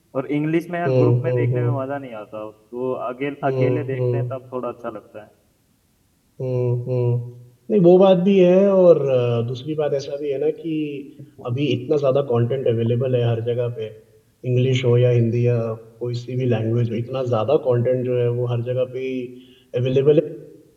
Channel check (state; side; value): identical; both; correlation 1.00